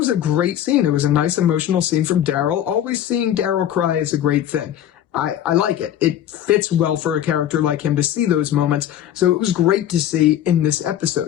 a great scene. It was a nice emotional scene from Daryl. Always seeing Daryl cry is a great thing. I like it. It fits well for a character like him to see those moments. So it was great to see in this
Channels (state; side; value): quieter; right; 11.2 dB